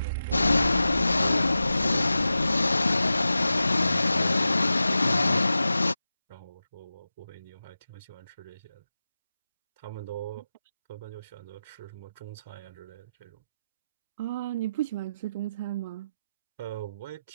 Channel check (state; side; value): inverted; both; correlation -0.93